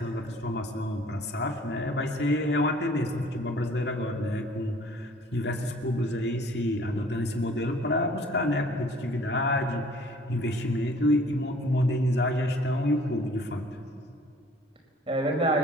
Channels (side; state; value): both; normal; correlation 0.54